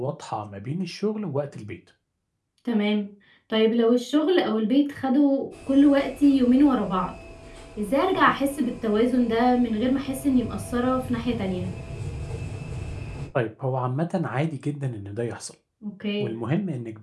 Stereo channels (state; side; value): identical; both; correlation 1.00